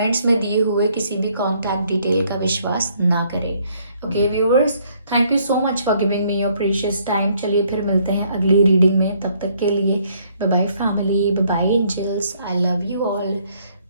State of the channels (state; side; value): inverted; both; correlation -0.67